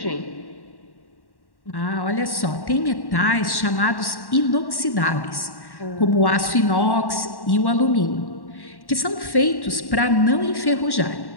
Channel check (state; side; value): late; right; 1.1 ms